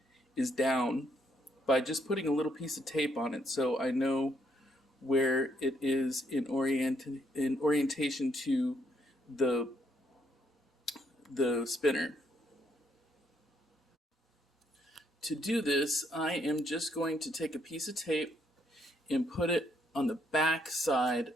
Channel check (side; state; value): both; normal; correlation 0.72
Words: is down by just putting a little piece of tape on it so I know where it is in orientation to the spinner. To do this, I am just going to take a piece of tape and put it on the back side